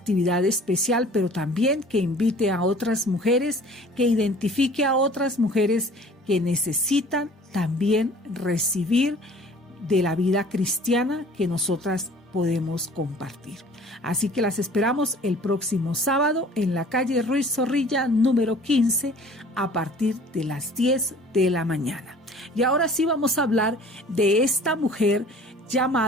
especial, pero también que invite a otras mujeres, que identifique a otras mujeres que necesitan también recibir de la vida cristiana que nosotras podemos compartir. Así que las esperamos el próximo sábado en la calle Ruiz Zorrilla, número 15, a partir de las 10 de la mañana. Y ahora sí vamos a hablar de esta mujer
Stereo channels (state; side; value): normal; both; correlation 0.49